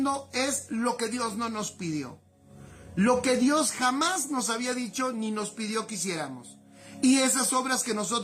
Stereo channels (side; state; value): both; identical; correlation 1.00